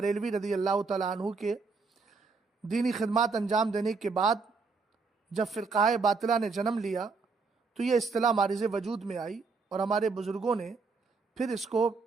رضی اللہ تعالیٰ عنہ کے دینی خدمات انجام دینے کے بعد جب فرقہ باطلہ نے جنم لیا تو یہ اصطلاح معرض وجود میں آئی، اور ہمارے بزرگوں نے پھر اس کو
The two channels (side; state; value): left; quieter; 4.5 dB